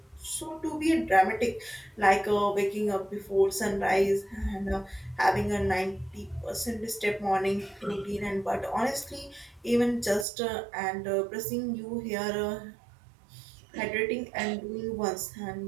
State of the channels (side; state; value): left; drops out; at 10.2 s